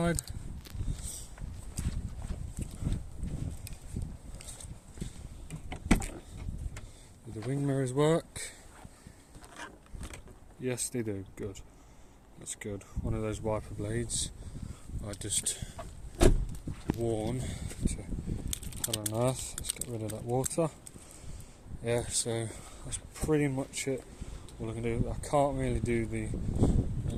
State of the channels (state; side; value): identical; both; correlation 1.00